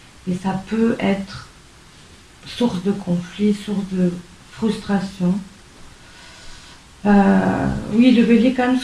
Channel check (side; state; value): both; identical; correlation 1.00